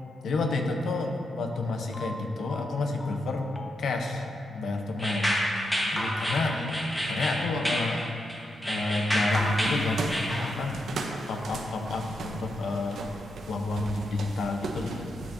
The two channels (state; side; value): normal; both; correlation 0.84